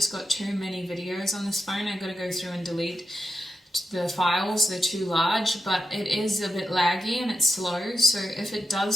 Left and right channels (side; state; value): both; normal; correlation 0.87